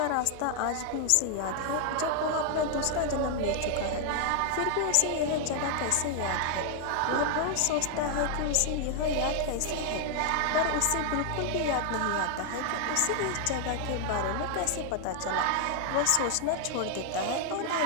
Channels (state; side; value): different; both; correlation 0.00